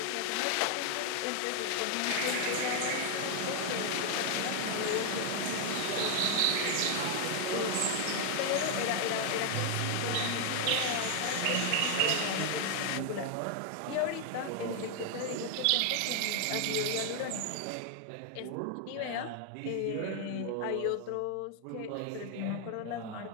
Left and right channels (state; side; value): different; both; correlation 0.00